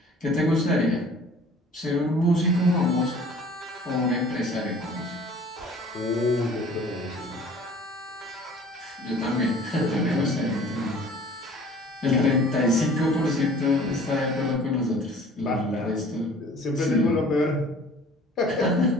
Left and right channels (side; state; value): both; normal; correlation 0.49